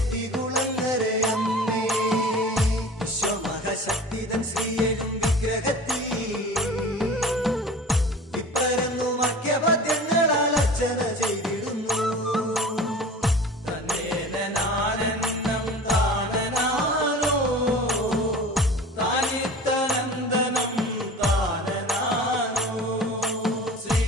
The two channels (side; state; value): both; normal; correlation 0.39